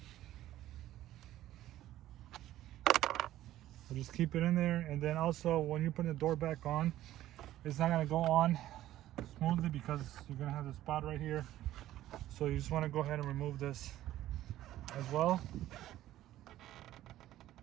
So just keep it in there, and then also when you put the door back on, it's not gonna go on smoothly because you're gonna have the spot right here. So you just want to go ahead and remove this as well.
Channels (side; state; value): left; quieter; 13.9 dB